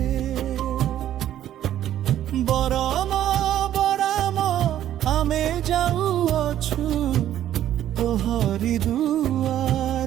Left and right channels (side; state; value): left; quieter; 11.8 dB